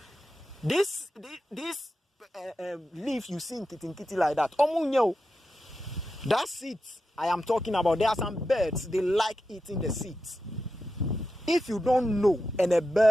This leaf you see in kitty like that. That seeds I am talking about. There are some birds, they like eating the seeds. If you don't know and a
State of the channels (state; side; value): normal; both; correlation 0.89